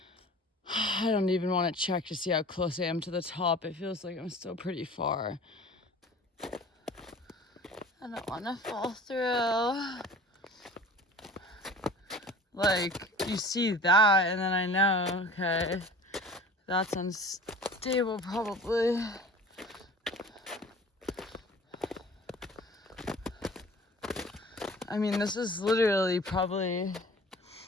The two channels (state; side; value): normal; both; correlation 0.43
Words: I don't even want to check to see how close I am to the top. It feels like I'm still pretty far. I don't want to fall through. Like, you see that, and then I know, okay, that's unstable probably. I mean, this is literally probably